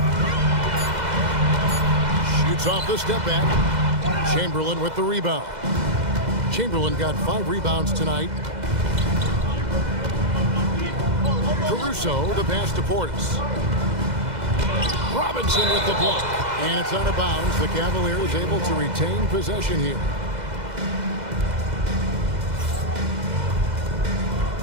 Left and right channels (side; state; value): left; late; 2.0 ms